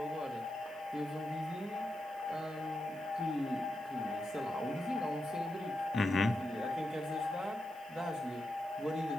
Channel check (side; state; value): right; noise; hiss, 24 dB below the sound